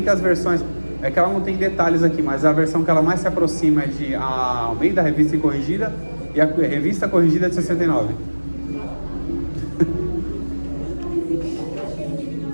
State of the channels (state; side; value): inverted; both; correlation -1.00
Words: que as versões, é que ela não tem detalhes aqui, mas a versão que ela mais se aproxima é de a Almeida, revista e corrigida, e a revista corrigida de 69.